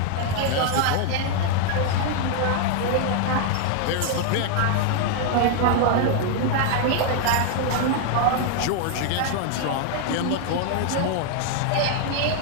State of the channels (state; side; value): different; both; correlation 0.00